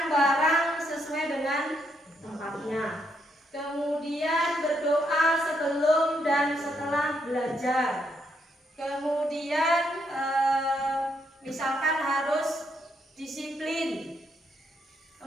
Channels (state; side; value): normal; both; correlation 0.76